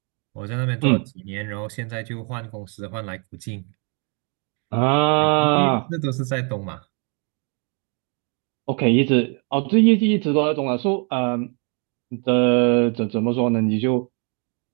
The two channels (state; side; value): quieter; left; 35.9 dB